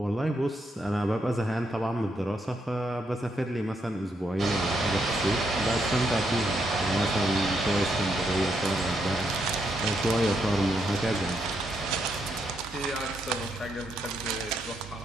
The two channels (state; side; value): normal; both; correlation 0.78